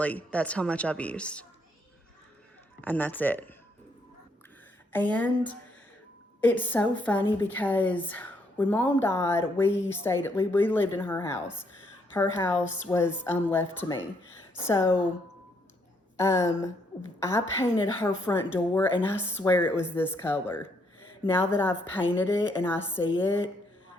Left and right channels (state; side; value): normal; both; correlation 0.72